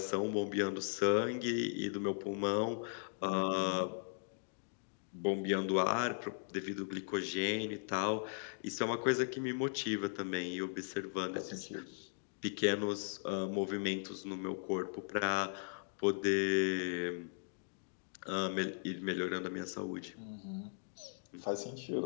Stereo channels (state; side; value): silent; right; digital silence